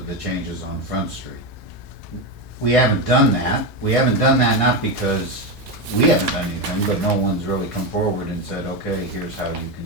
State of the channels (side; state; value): both; normal; correlation 0.12